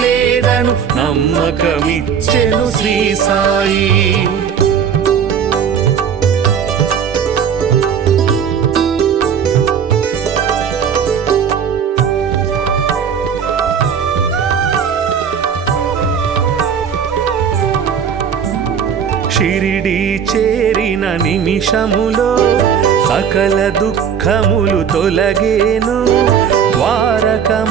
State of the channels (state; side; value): quieter; left; 7.5 dB